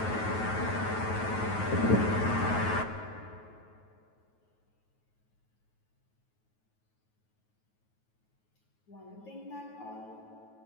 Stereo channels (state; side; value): late; right; 9.3 ms